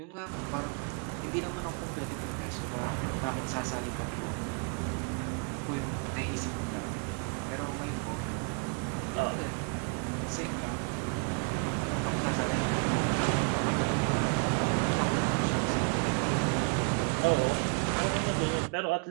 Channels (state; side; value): quieter; left; 35.8 dB